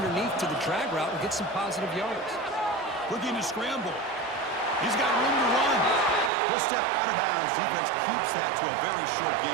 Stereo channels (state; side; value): drops out; left; at 6.3 s